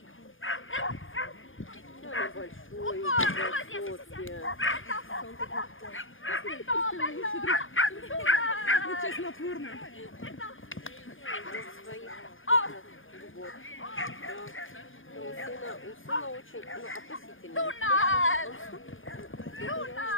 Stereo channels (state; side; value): late; right; 0.58 ms